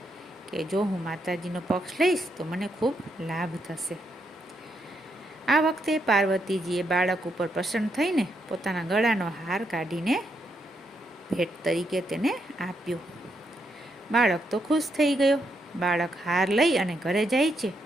કે જો હું માતાજીનો પક્ષ લઈશ તો મને ખૂબ લાભ થશે. આ વખતે પાર્વતીજીએ બાળક ઉપર પ્રસન્ન થઈને પોતાના ગળાનો હાર કાઢીને ભેટ તરીકે તેને આપ્યો. બાળક તો ખુશ થઈ ગયો. બાળક હાર લઈ અને ઘરે જાય છે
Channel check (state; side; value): normal; both; correlation 0.79